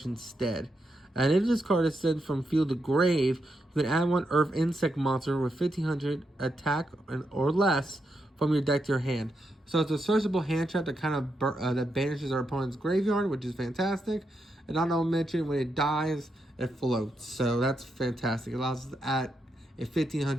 instead. And if this card is sent from field to grave, you can add one Earth Insect monster with 1500 attack or less from your deck to your hand. So it's a searchable hand trap that kind of that banishes our opponent's graveyard, which is fantastic. And not to mention, when it dies, it floats. So that's fantastic. It allows us to add a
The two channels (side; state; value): both; normal; correlation 0.83